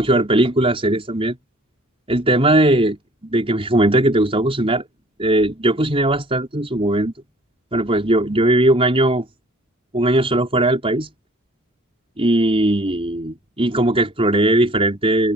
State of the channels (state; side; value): normal; both; correlation 0.53